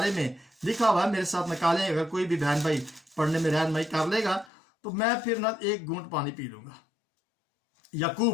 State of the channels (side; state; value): right; drops out; at 4.5 s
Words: میں لکھا ہوا ہے. میرے ساتھ نکالیں، اگر کوئی بھی بہن بھائی پڑھنے میں رہنمائی کر لے گا تو میں پھر نہ ایک گھونٹ پانی پی لوں گا.